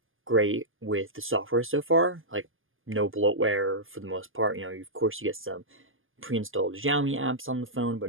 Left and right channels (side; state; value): left; late; 0.59 ms